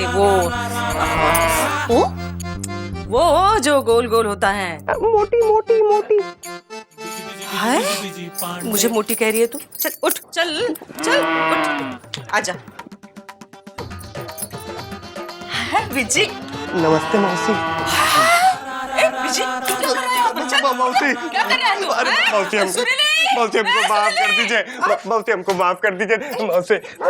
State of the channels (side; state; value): both; identical; correlation 1.00